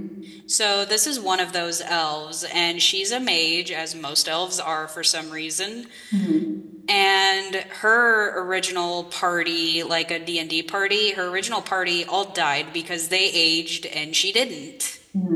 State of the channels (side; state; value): both; identical; correlation 1.00